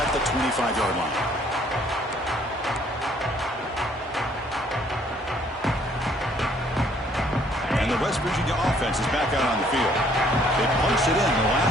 at the 25-yard line. And the West Virginia offense is back out on the field. They punched it in the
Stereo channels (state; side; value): normal; both; correlation 0.62